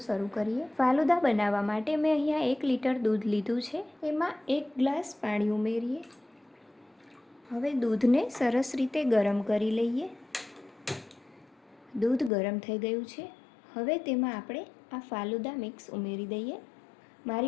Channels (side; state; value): right; drops out; at 12.3 s